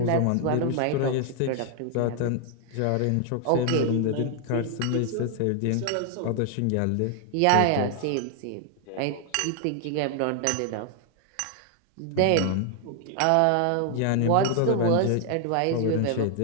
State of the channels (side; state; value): both; different; correlation 0.00